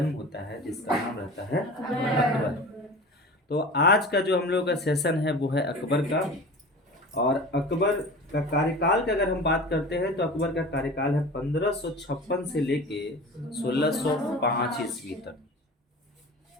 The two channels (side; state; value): both; normal; correlation 0.37